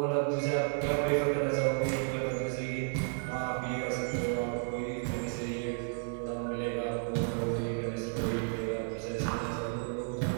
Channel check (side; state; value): left; silent; 56 dB below the other